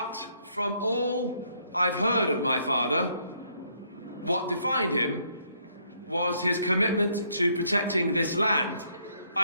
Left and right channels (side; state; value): both; inverted; correlation -0.70